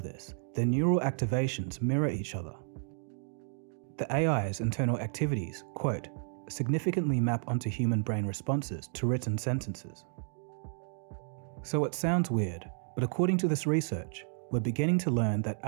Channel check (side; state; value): left; silent; digital silence